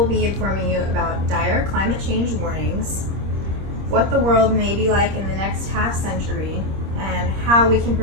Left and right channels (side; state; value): left; late; 26 ms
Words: be informing you about dire climate change warnings, what the world may be like in the next half century, and how we can